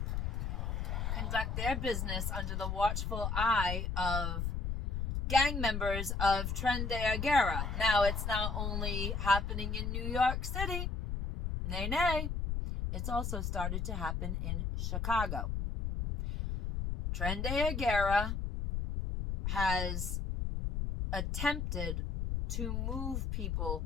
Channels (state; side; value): noise; left; rumble, 1 dB below the sound